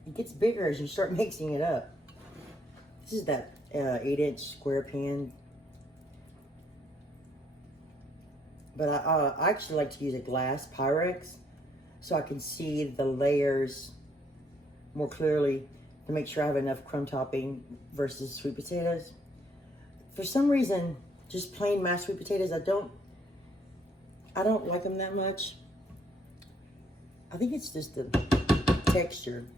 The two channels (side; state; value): both; normal; correlation 0.69